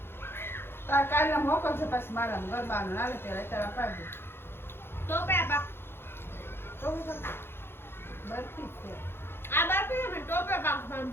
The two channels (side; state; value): right; late; 0.11 ms